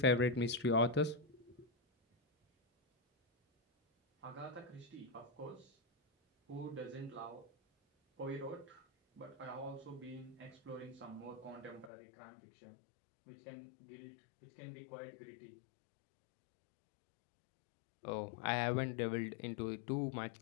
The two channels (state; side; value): drops out; right; at 11.9 s